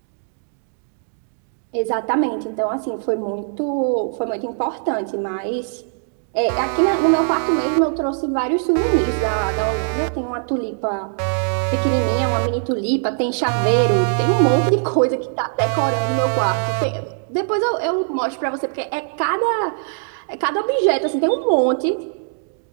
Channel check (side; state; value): left; silent; digital silence